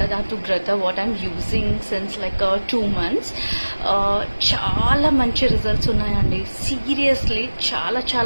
గ్రత, what I'm using since like 2 months. చాలా మంచి రిజల్ట్స్ ఉన్నాయండి, సీరియస్లీ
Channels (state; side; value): inverted; both; correlation -1.00